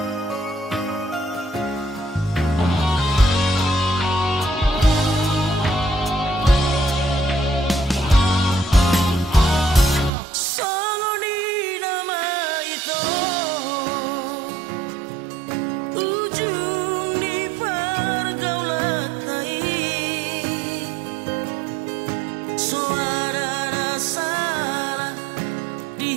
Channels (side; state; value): left; drops out; at 10.1 s